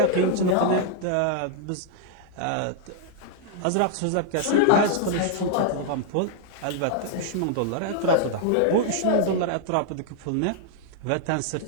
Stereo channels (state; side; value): different; both; correlation -0.01